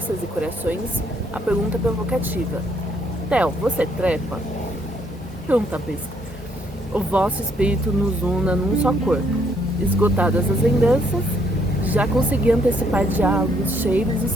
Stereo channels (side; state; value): both; normal; correlation 0.70